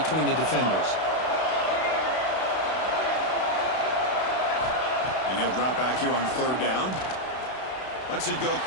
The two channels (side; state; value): right; late; 32 ms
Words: the defenders. And he'll drop back here on third down. Lets it go